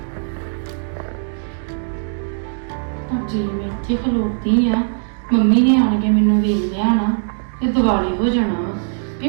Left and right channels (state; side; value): silent; left; digital silence